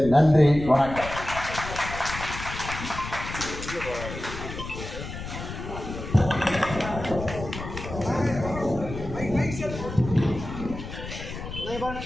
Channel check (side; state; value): left; noise; rumble, 9 dB below the sound